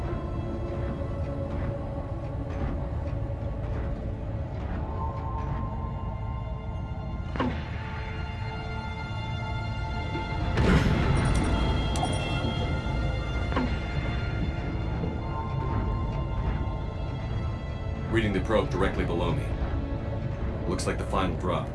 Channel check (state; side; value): identical; both; correlation 1.00